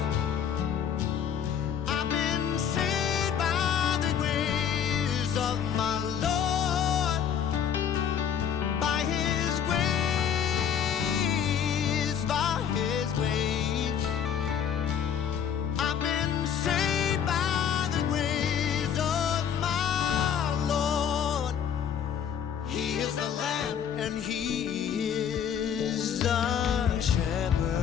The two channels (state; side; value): quieter; right; 8.4 dB